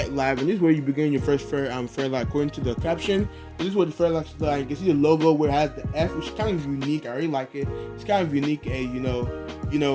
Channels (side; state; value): both; identical; correlation 1.00